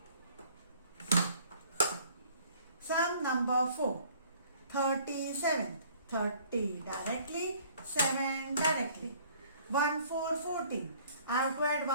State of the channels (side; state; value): both; inverted; correlation -0.55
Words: Sum number 4. 37. 30 directly, 7 directly. 1 4 14. I have to add